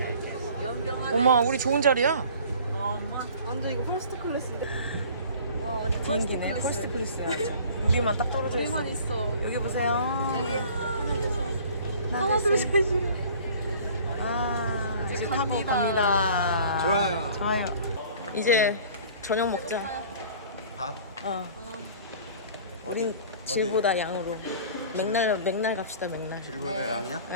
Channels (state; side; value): inverted; both; correlation -0.47